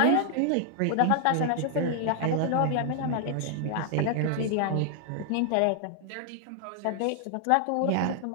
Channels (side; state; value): both; different; correlation 0.00